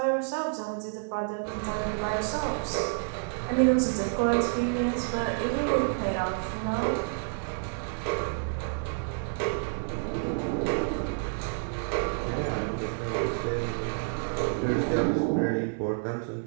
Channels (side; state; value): left; silent; 58 dB below the other